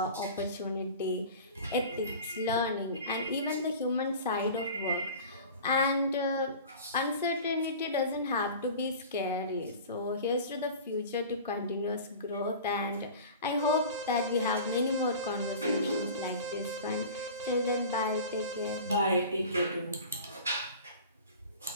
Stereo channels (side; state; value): both; inverted; correlation -0.38